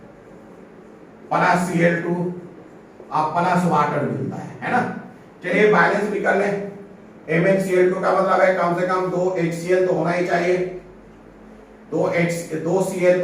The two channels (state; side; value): identical; both; correlation 1.00